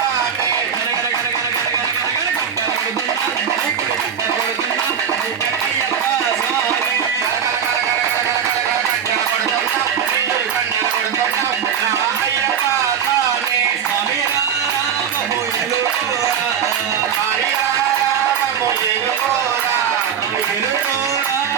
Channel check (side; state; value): left; quieter; 8.0 dB